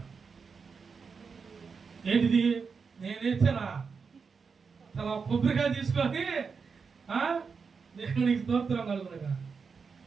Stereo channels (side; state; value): left; quieter; 5.4 dB